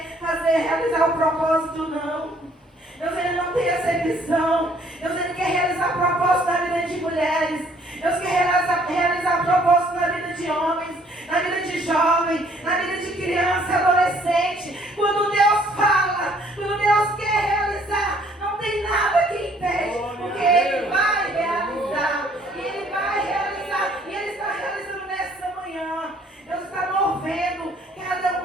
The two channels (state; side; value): normal; both; correlation 0.62